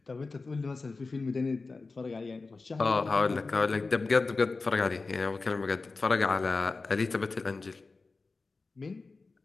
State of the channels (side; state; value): right; quieter; 3.9 dB